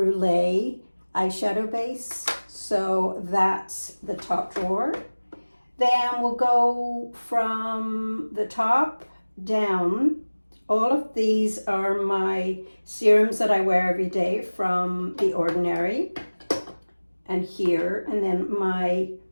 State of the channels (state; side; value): inverted; both; correlation -1.00